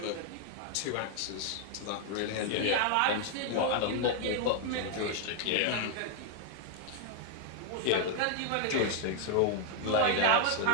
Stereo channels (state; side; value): different; both; correlation 0.00